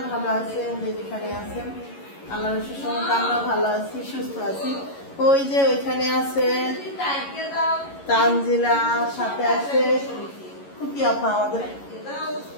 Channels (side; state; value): right; late; 11 ms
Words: ভালো আছেন, যেখানে আছেন। আল্লাহর রহমতে আমরা ভালো আছি, সুস্থ আছি। ওই যে ওইখানে আছে তানজিলা, সাথে আছে খুকি আপা,